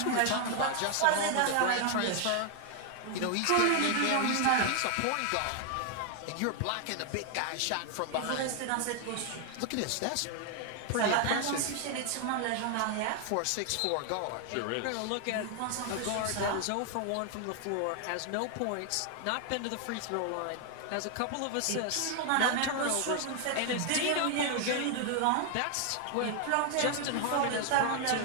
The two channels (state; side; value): different; both; correlation 0.00